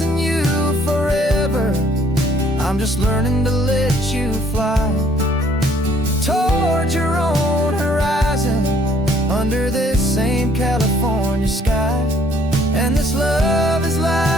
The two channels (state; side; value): normal; both; correlation 0.62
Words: you forever, I'm just learning to let you fly toward your own horizon, under this same California sky. And this love is